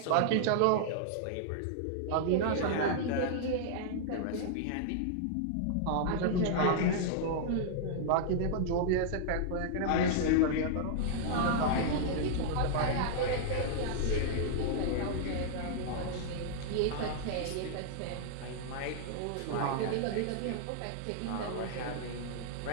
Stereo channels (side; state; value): both; different; correlation -0.01